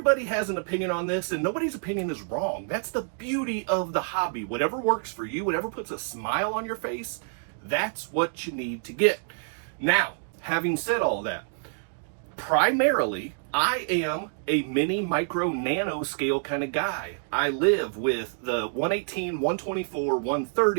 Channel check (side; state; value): left; silent; digital silence